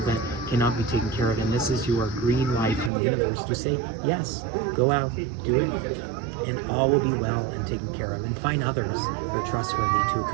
that cannot be taken care of. And this is your green light from the universe to say, yes, go out, do it, and all will be well and taken care of. And find others who are trustworthy to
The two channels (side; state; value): left; drops out; at 2.9 s